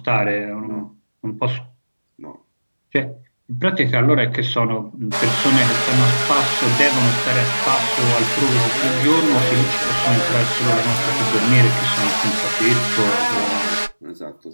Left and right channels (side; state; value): both; inverted; correlation -1.00